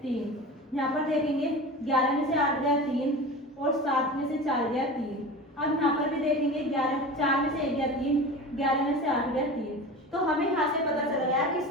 3। यहाँ पर देखेंगे 11 में से 8 गया 3 और 7 में से 4 गया 3। अब यहाँ पर भी देखेंगे 4 में से 1 गया 3, 11 में से 8 गया 3। तो हमें यहाँ से पता चल गया कि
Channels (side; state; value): both; normal; correlation 0.32